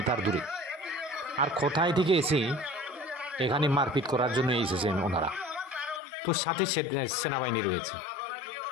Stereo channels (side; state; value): right; drops out; at 6.0 s